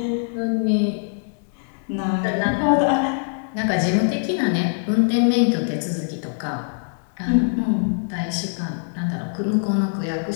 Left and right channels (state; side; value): silent; right; digital silence